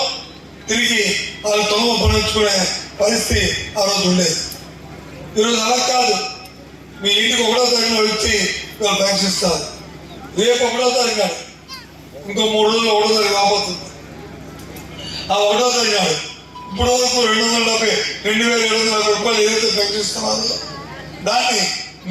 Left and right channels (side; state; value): both; identical; correlation 1.00